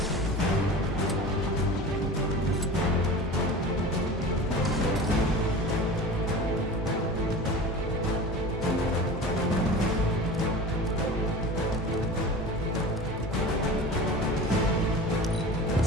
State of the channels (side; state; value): both; normal; correlation 0.35